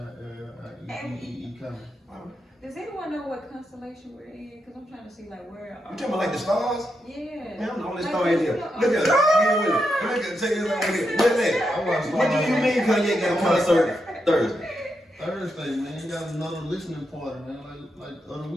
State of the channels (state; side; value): normal; both; correlation 0.84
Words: Comedy. Does anyone know what constellation we're in? Because I'm trying to see like where. You talking about like the stars? Yeah. Man, I'm the only Like, star in here. you know- Look at it. Look at it. Take this over here. Look at that. What do you mean Kanye got a concert Thursday? Thursday, man. You got another listening party, man. Like the other